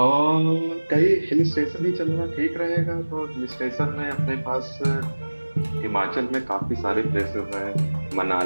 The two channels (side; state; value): both; inverted; correlation -1.00